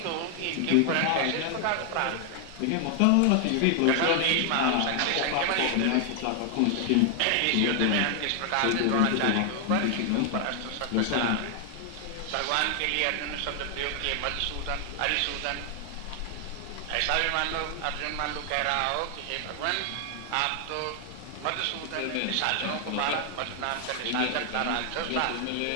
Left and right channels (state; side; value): different; both; correlation 0.00